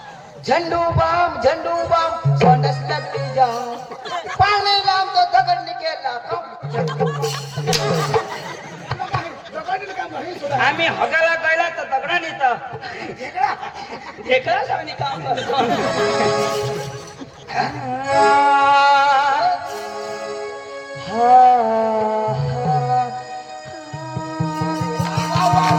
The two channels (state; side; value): identical; both; correlation 1.00